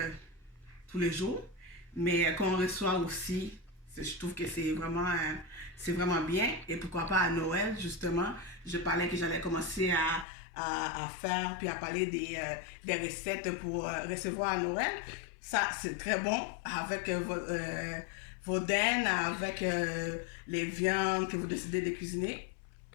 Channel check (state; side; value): drops out; right; at 10.2 s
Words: tous les jours, mais qu'on reçoit aussi, je trouve que c'est vraiment bien. Et pourquoi pas à Noël, justement, je parlais que j'allais commencer à faire, puis à parler des recettes pour recevoir à Noël. Ça, c'est très bon avec vos dents, avec les viandes que vous décidez de cuisiner.